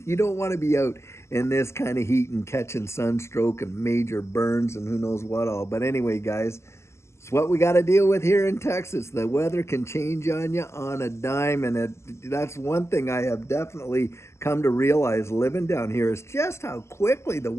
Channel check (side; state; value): right; late; 0.13 ms